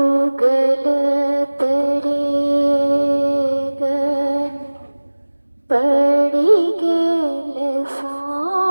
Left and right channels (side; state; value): both; inverted; correlation -1.00